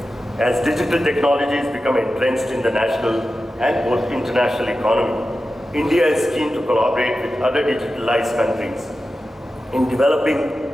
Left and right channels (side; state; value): both; normal; correlation 0.93